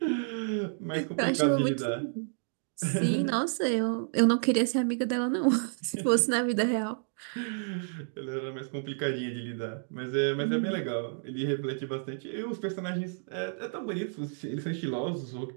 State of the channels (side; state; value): left; silent; digital silence